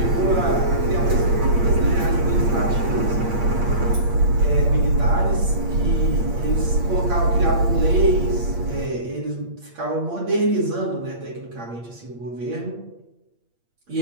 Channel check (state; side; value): late; left; 8.6 ms